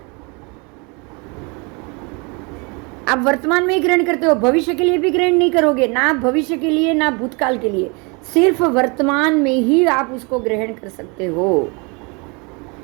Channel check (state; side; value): quieter; left; 30.5 dB